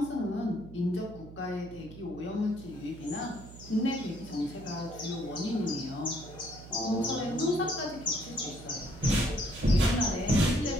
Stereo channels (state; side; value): noise; right; hum, 15 dB below the sound